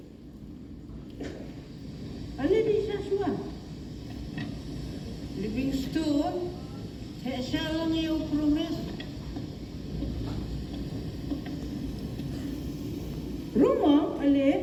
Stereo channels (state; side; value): identical; both; correlation 1.00